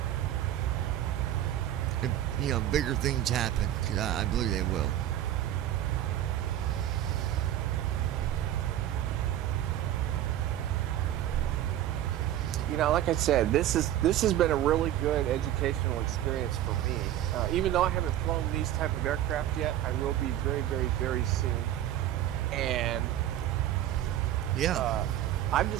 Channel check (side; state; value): left; quieter; 12.3 dB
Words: if, bigger things happen, because I believe they will. Like I said, this has been a really good educational experience for me. Even though I haven't flown these type of aircraft yet, I will be very, very, very soon. And yeah, I've